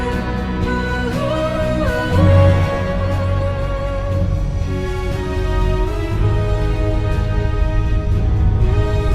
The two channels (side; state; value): both; identical; correlation 1.00